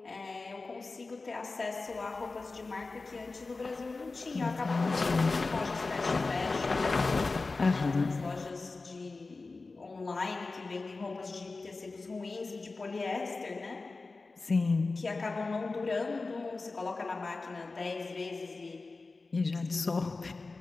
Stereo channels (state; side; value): quieter; right; 3.7 dB